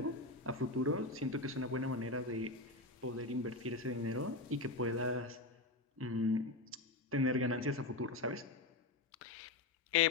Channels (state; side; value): quieter; right; 3.1 dB